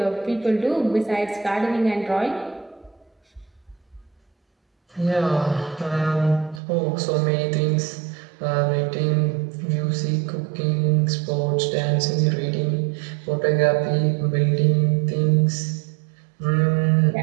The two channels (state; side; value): drops out; left; at 6.6 s